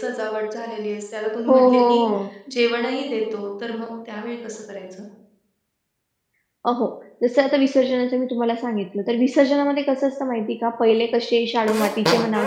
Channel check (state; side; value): identical; both; correlation 1.00